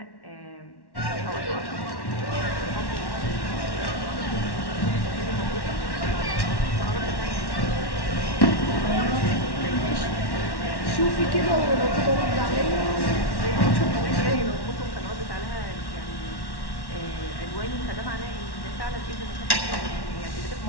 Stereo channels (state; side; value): late; right; 1.1 ms